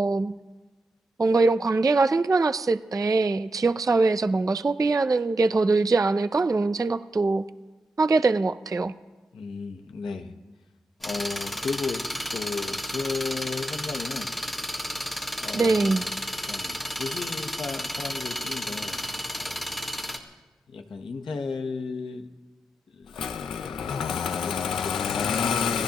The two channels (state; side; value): normal; both; correlation 0.86